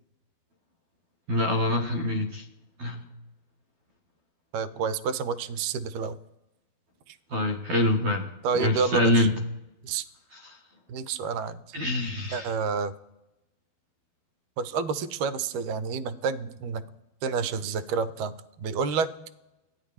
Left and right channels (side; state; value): left; late; 13 ms